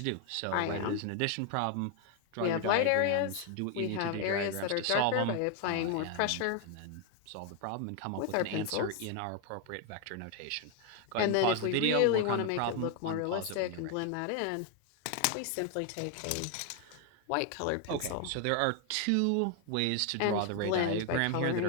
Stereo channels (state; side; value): different; both; correlation 0.01